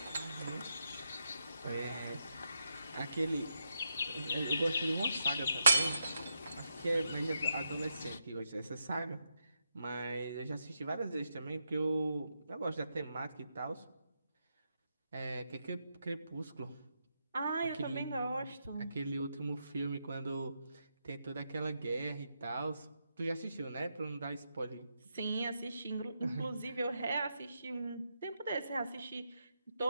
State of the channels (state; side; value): inverted; both; correlation -0.83